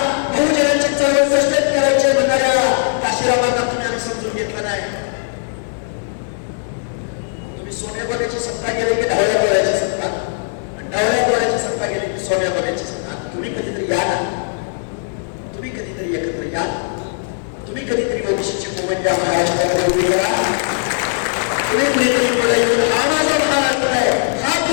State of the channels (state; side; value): silent; right; 67 dB below the other